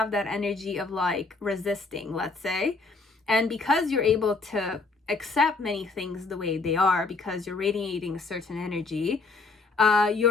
that energy of like resisting, let's say. And because you're able to accept many things the way they are, because you're radiating a certain energy,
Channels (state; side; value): quieter; right; 4.0 dB